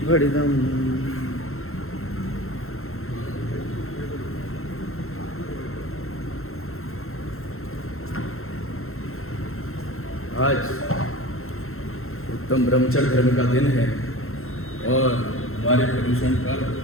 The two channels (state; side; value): late; right; 0.62 ms